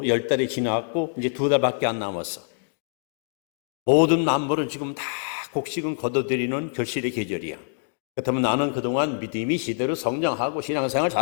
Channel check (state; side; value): silent; right; digital silence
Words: 10달이 지나갔고 이제 2달밖에 안 남았어. 모든 만물은 지금 다 곡식은 거둬들이는 결실의 계절이야. 그렇다면 나는 그동안 믿음이 제대로 성장하고 신앙생활